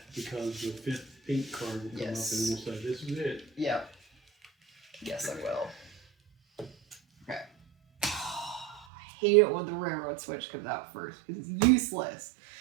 because the 5th pink card will come Yes. up and we'll say, this is it. Yep. Yes, I will. Okay. hate it when the railroad switch comes out first because it's useless.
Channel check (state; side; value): drops out; left; at 8.8 s